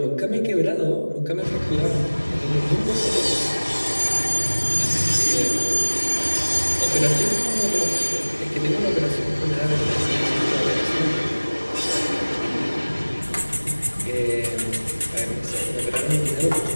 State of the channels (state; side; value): inverted; both; correlation -1.00